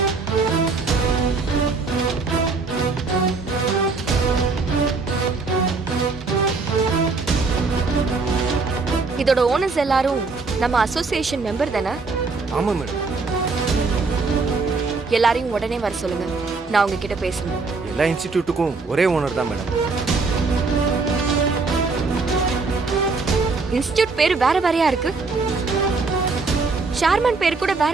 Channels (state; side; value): quieter; left; 4.1 dB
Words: இதோட ஓனர்ஸ் எல்லாரும் நம்ம அசோசியேஷன் மெம்பர் தானே? ஆமா மேடம். எல்லாரையும் உடனே வர சொல்லுங்க, நான் உங்ககிட்ட பேசணும். எல்லா இன்ஸ்டிடியூட்டுக்கும் ஒரே ஓனர் தான் மேடம். இன்ஸ்டிடியூட் பேரு வேற வேறையா இருக்கு, சேர்மன் பேர் கூட